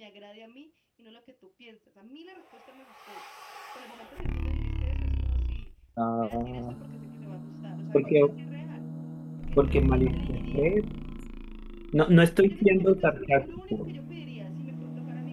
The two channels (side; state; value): both; identical; correlation 1.00